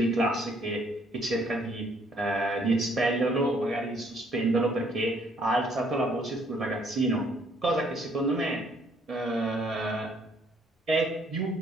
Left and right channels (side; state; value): both; normal; correlation 0.65